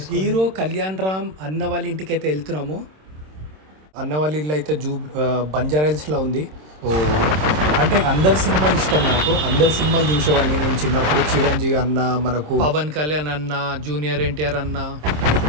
Hero Kalyan Ram అన్న వాళ్ళ ఇంటికి అయితే వెళ్తున్నాము. అన్న వాళ్ళ ఇల్లు అయితే బంజారాహిల్స్లో ఉంది. సో అంటే అందరు సినిమాలు ఇష్టం నాకు. అందరు సినిమాలు చూసేవాడిని నేను చిన్నప్పుడు. చిరంజీవి అన్న, మనకు పవన్ కళ్యాణ్ అన్న, జూనియర్ ఎన్టీఆర్ అన్న,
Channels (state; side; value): late; left; 26 ms